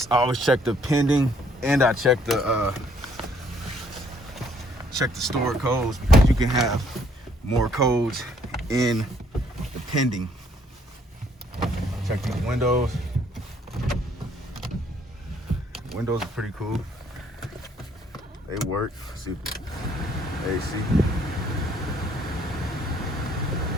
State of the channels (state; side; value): normal; both; correlation 0.65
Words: I always check the pending and I check the stored codes, because you can have more codes in the pending. Check these windows. Windows are pretty cool. They work. See, AC.